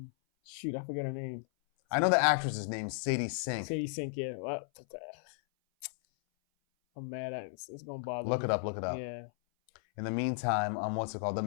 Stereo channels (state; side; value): silent; right; 55 dB below the other